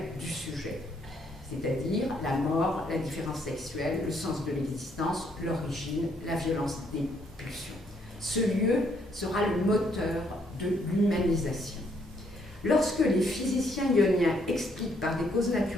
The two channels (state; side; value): normal; both; correlation 0.70